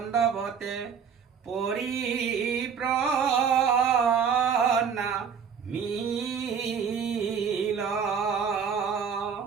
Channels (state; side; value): quieter; left; 6.9 dB